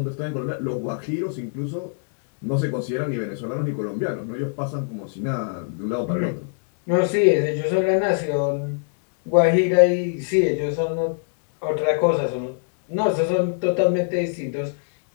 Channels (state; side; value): silent; right; 63 dB below the other